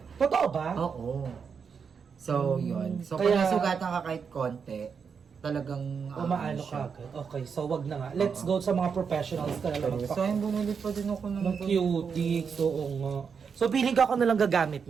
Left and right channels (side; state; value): left; quieter; 6.2 dB